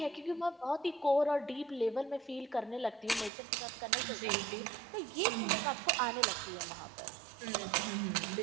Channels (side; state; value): left; drops out; at 3.3 s